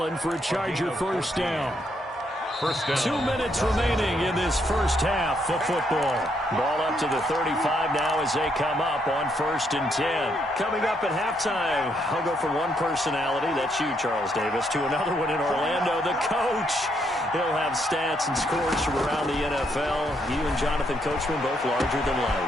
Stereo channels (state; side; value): normal; both; correlation 0.75